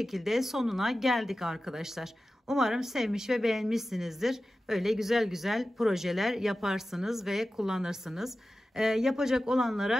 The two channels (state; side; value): normal; both; correlation 0.94